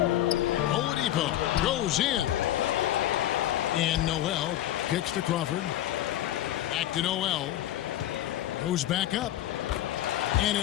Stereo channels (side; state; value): right; quieter; 13.2 dB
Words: Oladipo goes in. And Noel kicks to Crawford. Back to Noel. Goes back up. And